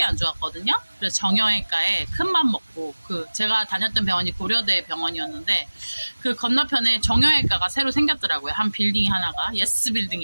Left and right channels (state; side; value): inverted; both; correlation -1.00